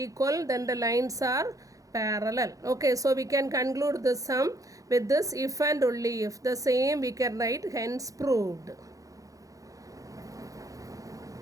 then the lines are parallel. Okay, so we can conclude the sum with this if and only if. The same we can write, hence proved.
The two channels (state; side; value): late; left; 0.17 ms